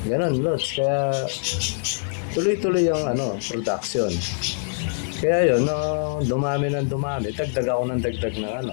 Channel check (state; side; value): silent; right; digital silence